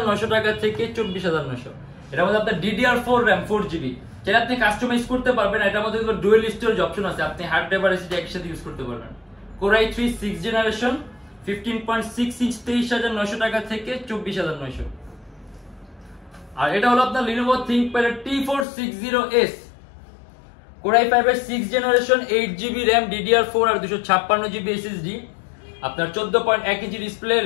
টাকা থেকে 24,900। এটার মধ্যে আপনার DDR4 র্যাম 4GB, যেটা আপনি কাস্টমাইজ করতে পারবেন। এটার মধ্যে ডুয়াল স্টোরেজ অপশন আছে, আপনি হার্ড ড্রাইভ আর এসএসডি একসাথে ইউজ করতে পারবেন। কোর i3 6 জেনারেশন 15.6 ইঞ্চ 23,900 টাকা থেকে 24,900। আর এটা হলো আপনার Lenovo ThinkPad T460S core i5 এর 6 জেনারেশন 8GB র্যাম DDR4 আর 256GB SSD। আপনার 14.1 ইঞ্চি ডিসপ্লে,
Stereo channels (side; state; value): right; drops out; at 18.7 s